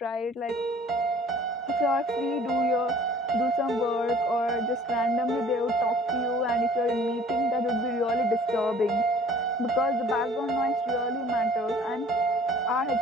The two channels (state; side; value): normal; both; correlation 0.52